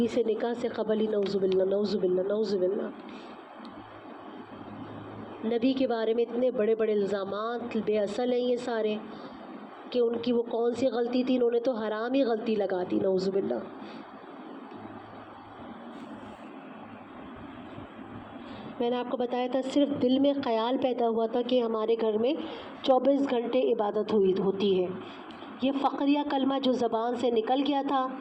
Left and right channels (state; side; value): identical; both; correlation 1.00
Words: سے نکاح سے قبل ہی نعوذ باللہ نعوذ باللہ نعوذ باللہ نبی کے بارے میں اتنے بڑے بڑے الزامات بے اصل ہیں یہ سارے کہ ان کی وہ کون سی غلطی تھی، انہوں نے تو حرام ہی غلطی لگا دی، نعوذ باللہ۔ میں نے آپ کو بتایا تھا صرف دل میں خیال پیدا ہوا تھا کہ ہمارے گھر میں 24 گھنٹے عبادت ہوتی ہے۔ یہ فقریہ کلمہ جو زبان سے نکل گیا تھا